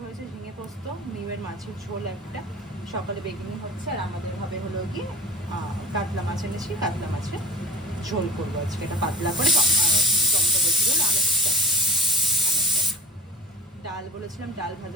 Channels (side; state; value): both; normal; correlation 0.35